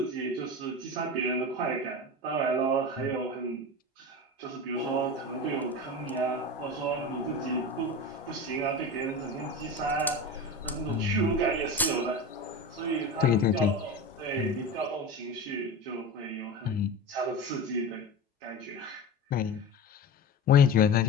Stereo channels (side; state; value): both; normal; correlation 0.28